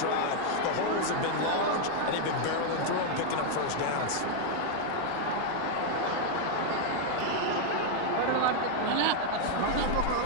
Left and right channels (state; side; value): different; both; correlation 0.00